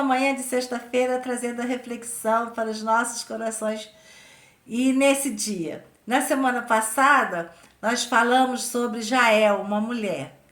manhã de sexta-feira trazendo a reflexão para os nossos corações. E nesse dia, na semana passada, nós falamos sobre Jael, uma mulher.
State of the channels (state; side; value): identical; both; correlation 1.00